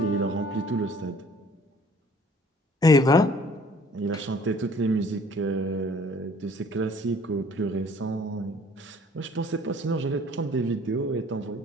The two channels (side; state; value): both; normal; correlation 0.55